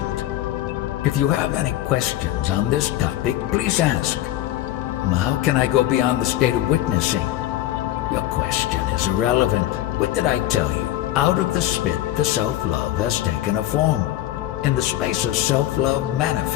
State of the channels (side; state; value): right; quieter; 14.1 dB